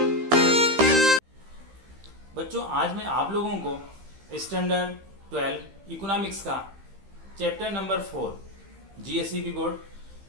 बच्चों, आज मैं आप लोगों को स्टैंडर्ड 12 इकोनॉमिक्स का चैप्टर नंबर 4 जीएसईबी बोर्ड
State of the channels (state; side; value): late; left; 15 ms